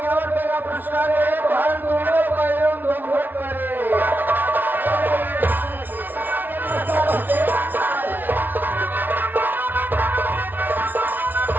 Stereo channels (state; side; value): late; left; 0.089 ms